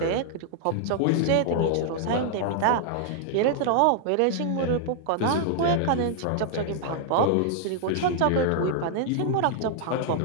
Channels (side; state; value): both; different; correlation -0.01